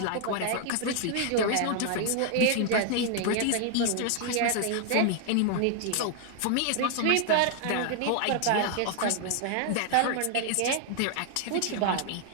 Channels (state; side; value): different; both; correlation 0.00